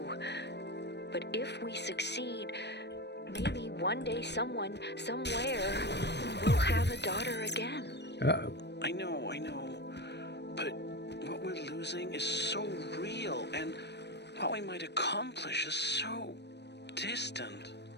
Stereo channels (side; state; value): right; late; 0.50 ms